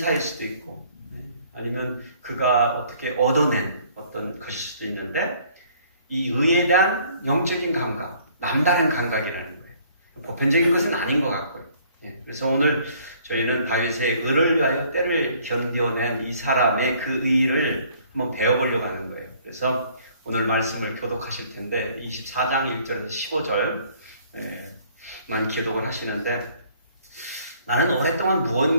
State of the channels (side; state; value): both; inverted; correlation -0.59